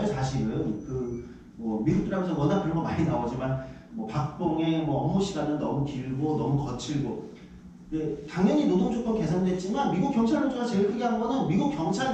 사실은 뭐 미국 드라마에서 워낙 그런 거 많이 나오지만 뭐 박봉의 뭐 업무 시간은 너무 길고 너무 거칠고. 네, 당연히 노동 조건 개선됐지만 미국 경찰 노조가 제일 크게 한 거는 미국 경찰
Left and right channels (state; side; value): identical; both; correlation 1.00